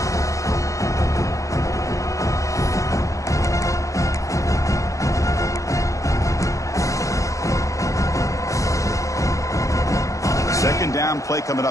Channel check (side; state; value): right; late; 0.15 ms